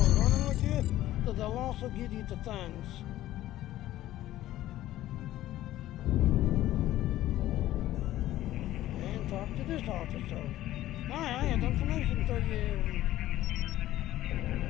running with you, so they'll also give you the things. And talk to this officer. I have information for you.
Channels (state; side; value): quieter; right; 14.4 dB